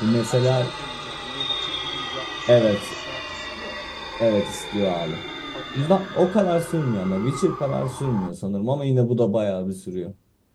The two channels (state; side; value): identical; both; correlation 1.00